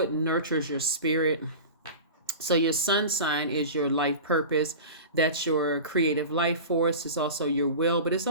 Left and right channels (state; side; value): inverted; both; correlation -0.32